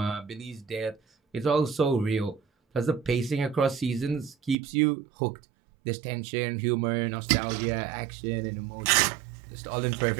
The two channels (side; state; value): left; drops out; at 4.5 s